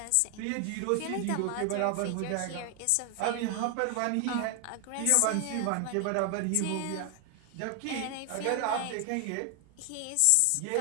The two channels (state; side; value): different; both; correlation 0.00